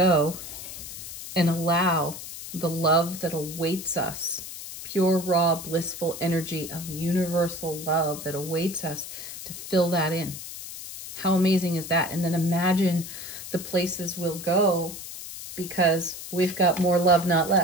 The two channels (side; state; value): left; noise; hiss, 10 dB below the sound